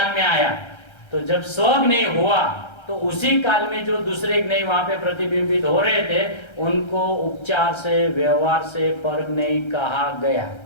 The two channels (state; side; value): late; right; 1.3 ms